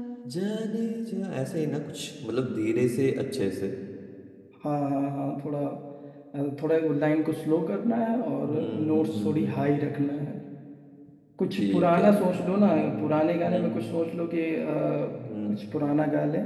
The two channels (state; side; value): identical; both; correlation 1.00